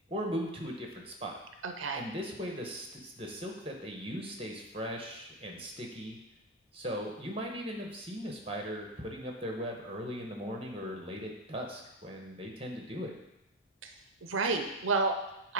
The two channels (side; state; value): both; normal; correlation 0.11